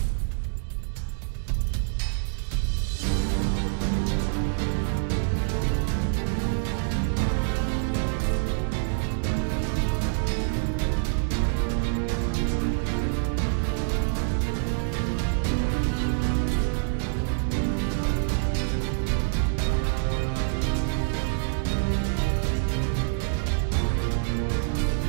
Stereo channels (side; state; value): left; silent; digital silence